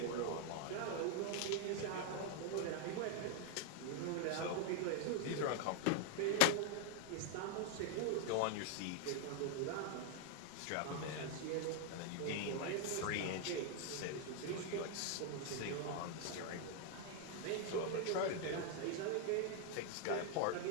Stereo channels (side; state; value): both; different; correlation 0.00